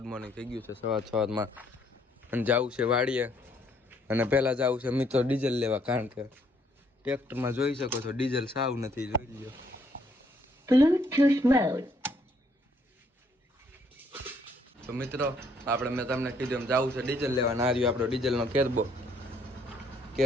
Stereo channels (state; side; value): normal; both; correlation 0.67